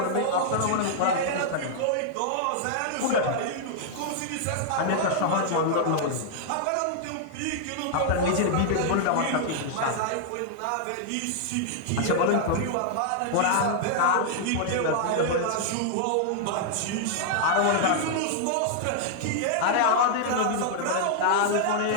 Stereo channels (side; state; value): both; different; correlation -0.01